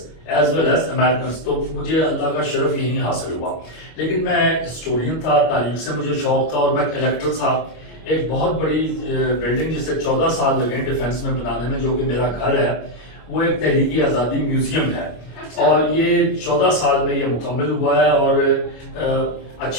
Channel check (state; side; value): late; right; 25 ms